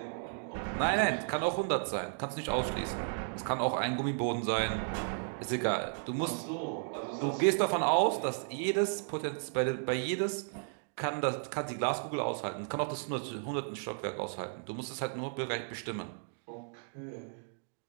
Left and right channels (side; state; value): left; silent; digital silence